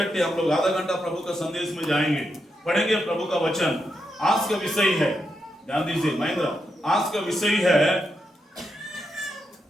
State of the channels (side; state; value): both; normal; correlation 0.84